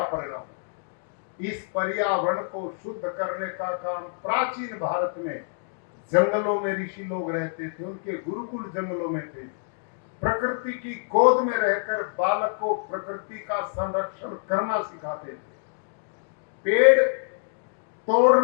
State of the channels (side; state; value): right; silent; digital silence